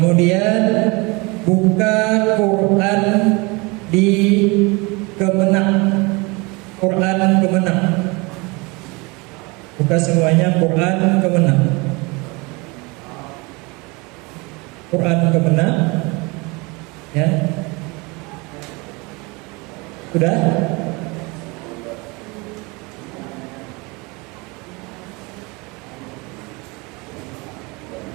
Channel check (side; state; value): left; quieter; 26.7 dB